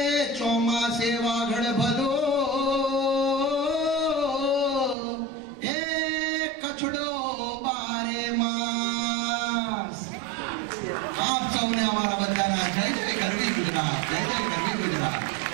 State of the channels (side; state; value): left; drops out; at 5.0 s